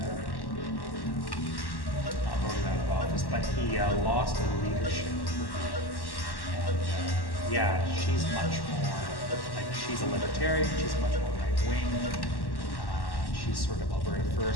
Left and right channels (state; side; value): late; right; 1.1 ms